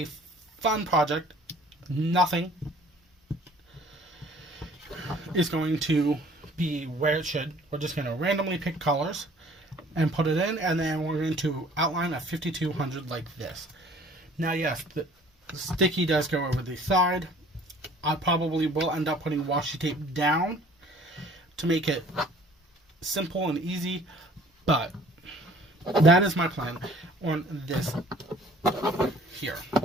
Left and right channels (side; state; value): both; normal; correlation 0.53